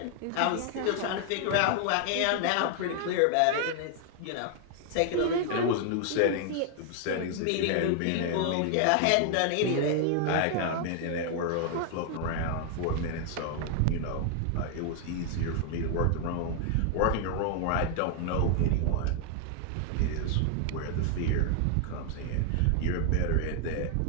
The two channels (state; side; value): different; both; correlation 0.00